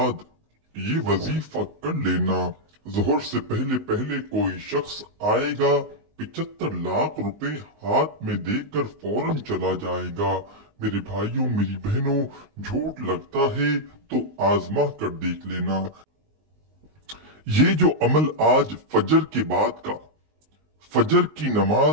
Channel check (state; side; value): late; left; 19 ms